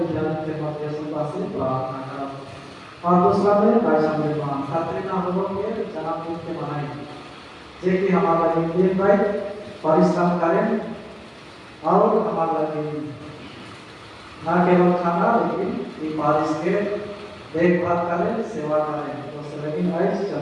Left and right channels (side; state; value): both; identical; correlation 1.00